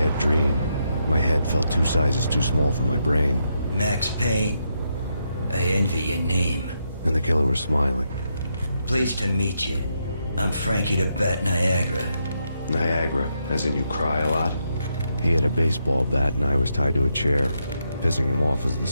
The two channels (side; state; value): both; inverted; correlation -0.81